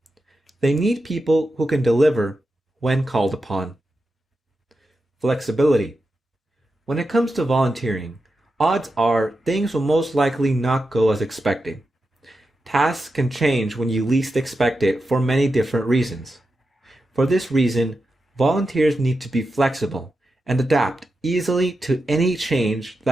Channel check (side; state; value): both; normal; correlation 0.89